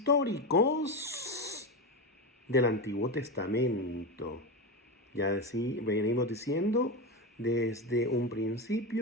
del Antiguo Testamento. Ya venimos diciendo desde un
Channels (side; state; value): both; normal; correlation 0.17